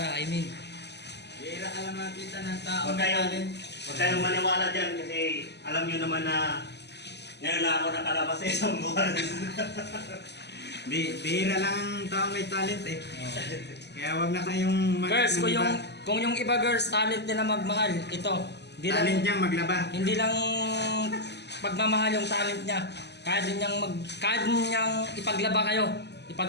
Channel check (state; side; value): late; right; 0.50 ms